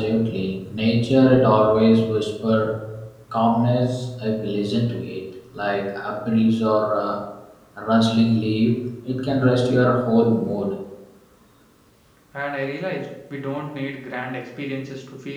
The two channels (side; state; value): both; identical; correlation 1.00